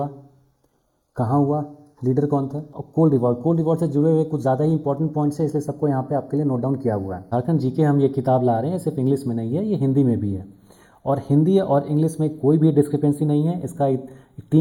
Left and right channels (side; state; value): both; identical; correlation 1.00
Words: कहाँ हुआ, लीडर कौन थे, और कोल रिवॉर्ड से जुड़े हुए कुछ ज़्यादा ही इंपॉर्टेंट पॉइंट्स है, इसलिए सबको यहाँ पे आपके लिए नोट डाउन किया हुआ है। झारखंड जीके हम ये किताब ला रहे हैं, सिर्फ इंग्लिश में नहीं है, ये हिंदी में भी है, और हिंदी और इंग्लिश में कोई भी डिस्क्रिपेंसी नहीं है। इसका